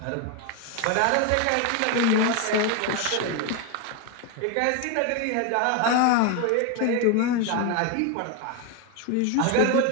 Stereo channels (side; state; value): both; different; correlation 0.02